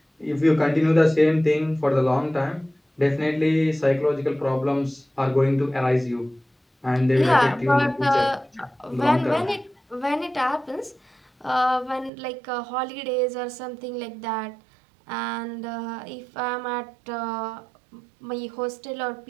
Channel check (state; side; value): drops out; left; at 12.1 s